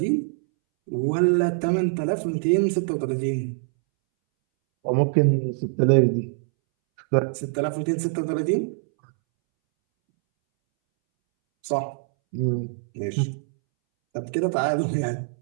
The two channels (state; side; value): silent; left; 63 dB below the other